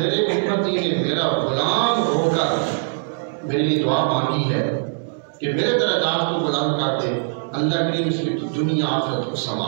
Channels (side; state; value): left; silent; digital silence